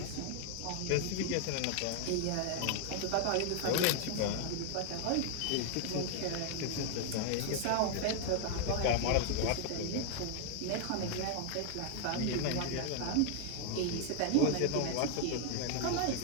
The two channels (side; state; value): both; different; correlation 0.00